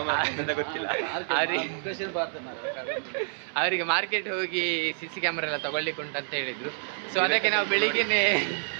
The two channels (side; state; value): left; silent; 59 dB below the other